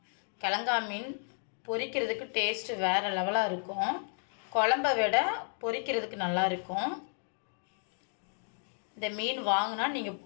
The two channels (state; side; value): silent; right; 56 dB below the other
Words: கிழங்கா மீன் பொரிக்கிறதுக்கு டேஸ்ட்டு வேறு லெவலாக இருக்கும். குழம்பை விட பொரிக்கிறதுக்கு நல்லா இருக்கும். இந்த மீன் வாங்கினா நீங்கள்